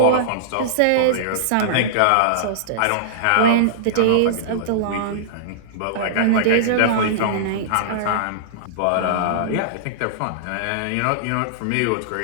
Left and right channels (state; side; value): different; both; correlation -0.02